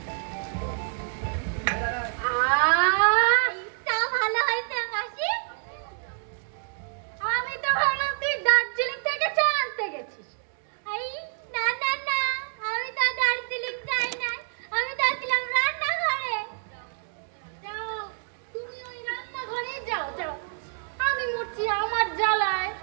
চা ভালো হয়েছে মাসি। আমি তো ভাবলাম তুই দার্জিলিং থেকে চা আনতে গেছিস। এই না না না, আমি তো দার্জিলিং যাই নাই, আমি তো ছিলাম রান্নাঘরে। যাও, তুমি ওই রান্নাঘরে যাও যাও। আমি মরছি আমার জ্বালায়।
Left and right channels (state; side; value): silent; left; 60 dB below the other